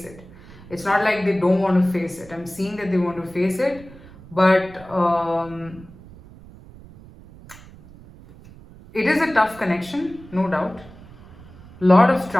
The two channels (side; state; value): right; noise; rumble, 20 dB below the sound